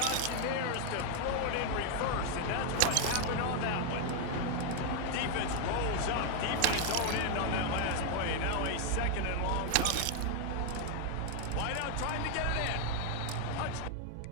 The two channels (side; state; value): both; different; correlation 0.01